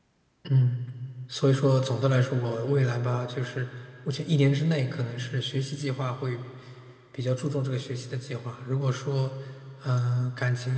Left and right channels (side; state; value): both; identical; correlation 1.00